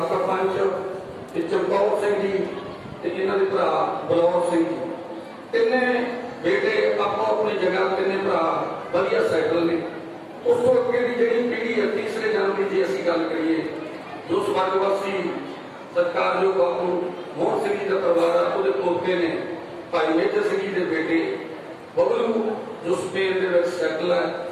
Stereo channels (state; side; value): identical; both; correlation 1.00